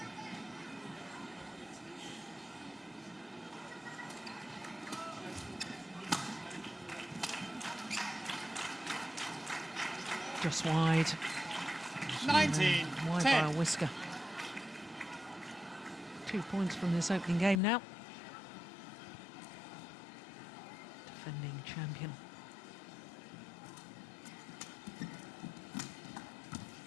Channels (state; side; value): drops out; right; at 17.6 s